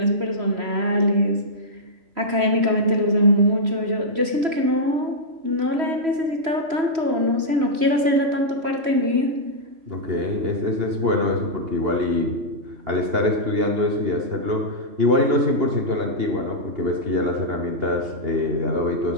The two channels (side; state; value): left; late; 3.1 ms